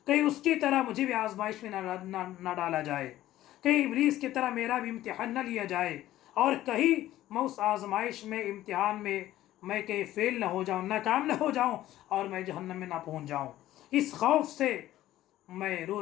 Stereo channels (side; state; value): right; quieter; 14.3 dB